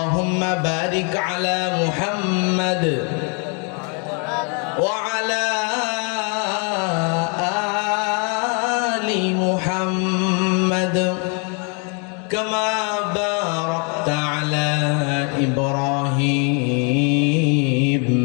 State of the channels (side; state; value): right; quieter; 36.7 dB